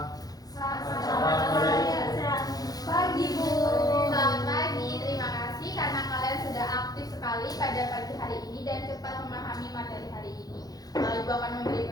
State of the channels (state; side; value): late; right; 0.18 ms